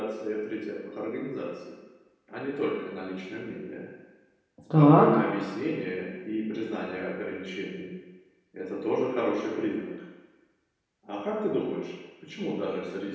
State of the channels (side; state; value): both; identical; correlation 1.00